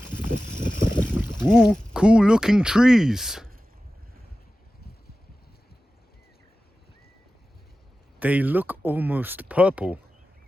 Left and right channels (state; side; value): normal; both; correlation 0.95